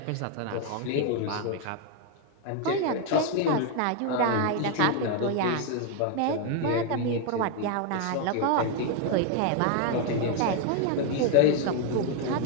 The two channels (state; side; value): different; both; correlation 0.00